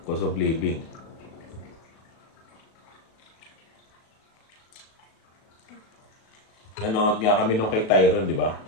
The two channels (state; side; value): late; right; 37 ms